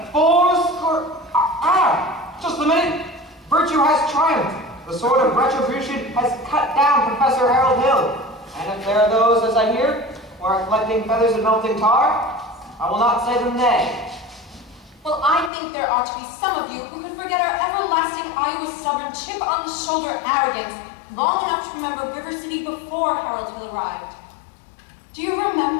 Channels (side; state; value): right; drops out; at 15.5 s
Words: 4 score... just a minute. Virtue has triumphed. The sword of retribution has cut down Professor Harold Hill. And if there are those, as I hear, who are collecting feathers and melting tar, I will not say them nay. Well, I think there ought to be some of you who could forget our everlasting Iowa stubborn chip on the shoulder arrogance long enough to remember River City before Harold Hill arrived. Do you